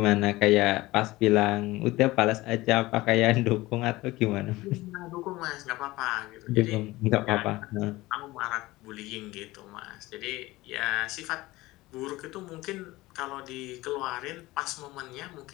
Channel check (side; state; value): right; quieter; 19.3 dB